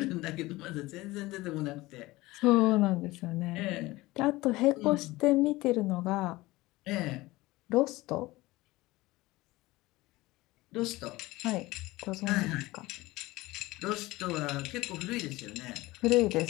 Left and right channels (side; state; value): right; quieter; 19.8 dB